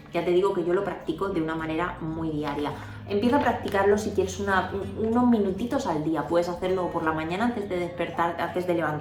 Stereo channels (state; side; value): identical; both; correlation 1.00